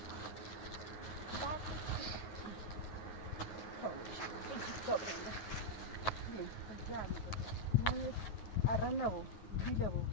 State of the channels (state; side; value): late; right; 9.3 ms